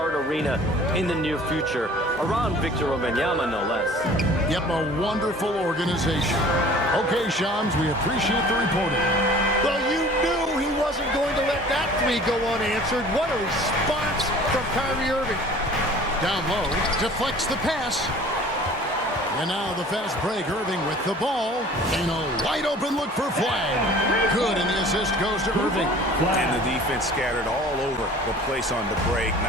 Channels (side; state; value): both; normal; correlation 0.47